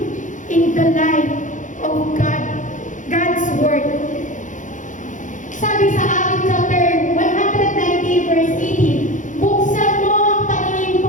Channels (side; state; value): right; late; 0.37 ms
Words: in the light of God's Word. Sabi sa Acts chapter 190 verse 18, buksan mo ang paningin